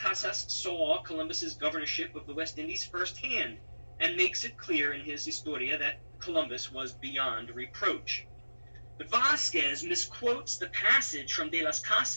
saw Columbus's governorship of the West Indies firsthand, and makes it clear in his Historia that Columbus was beyond reproach. But Vasquez misquotes the passage from De las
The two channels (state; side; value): inverted; both; correlation -1.00